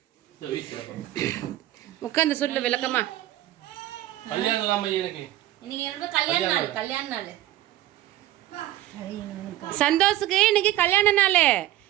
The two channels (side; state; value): left; quieter; 14.6 dB